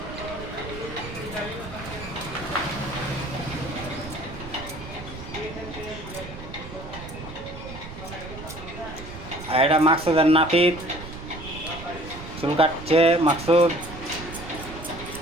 আর এটা মাকসুদ আর নাপিত চুল কাটছে। মাকসুদ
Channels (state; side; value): noise; right; rumble, 12 dB below the sound